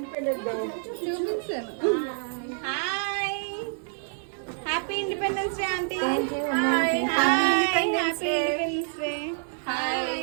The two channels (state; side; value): silent; left; digital silence